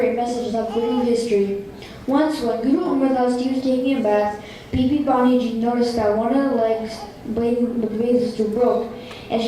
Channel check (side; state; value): both; identical; correlation 1.00